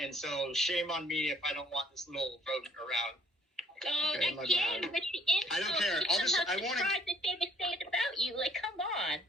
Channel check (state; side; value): normal; both; correlation 0.61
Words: and so shame on me if I don't want this little rodent around. So Okay, my again, bad. with the insult, I don't care. I'll just- somehow I wanna- surprised that they would say it about you. Like, come on.